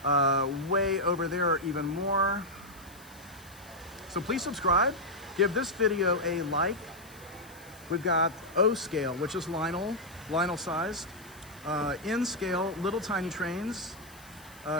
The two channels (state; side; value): noise; left; hiss, 23 dB below the sound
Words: Way over there are even more. So please subscribe. Give this video a like. We've got O scale, which is Lionel sized. N scale, little tiny trains.